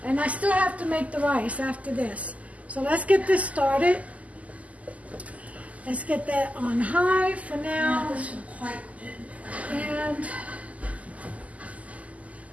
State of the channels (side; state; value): left; late; 0.072 ms